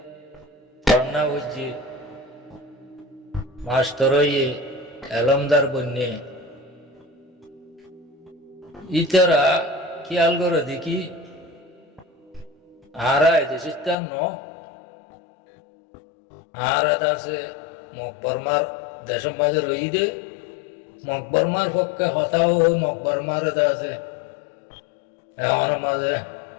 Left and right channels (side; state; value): right; drops out; at 14.0 s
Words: parna hujji masteroyi elamdar bunni itara খেয়াল করে দেখি আরা দেশিস্তান ন আরা দাসে মকবরমার দেশের মাঝে রই দে মকবরমার পক্ষে হতাও ওই মকবরমার দাসে এমন মাঝে